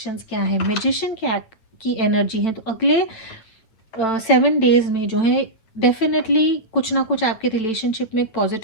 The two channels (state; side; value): late; right; 9.0 ms